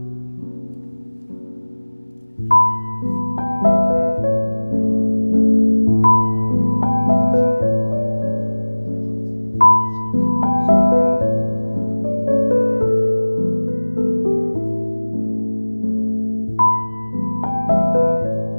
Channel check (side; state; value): both; inverted; correlation -1.00